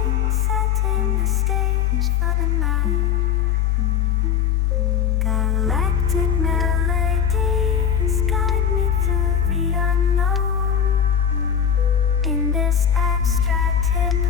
setting the stage for the night. Galactic melodies guide me through the unknown. In this abstract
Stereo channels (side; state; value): right; quieter; 8.3 dB